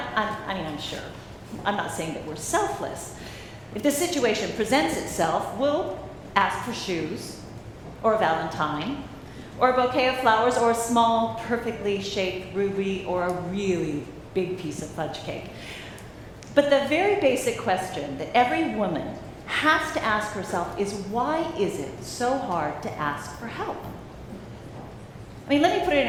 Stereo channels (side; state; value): both; identical; correlation 1.00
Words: sure. I'm not saying that we're selfless. If the situation presents itself, we'll ask for shoes, or a Valentine, or a bouquet of flowers, or a small, perfectly shaped ruby, or a really big piece of fudge cake. But the very basic question that every woman has to ask herself is, why is it so hard to ask for help? I mean, let me put it